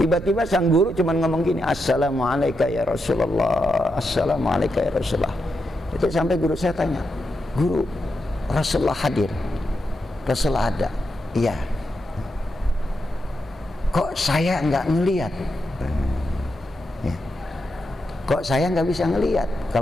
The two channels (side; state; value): both; normal; correlation 0.85